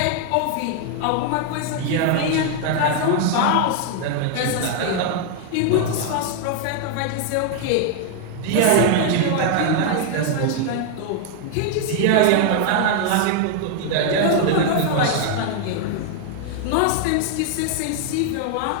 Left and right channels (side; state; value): both; different; correlation 0.00